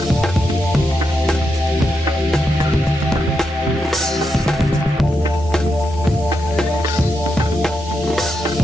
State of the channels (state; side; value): normal; both; correlation 0.84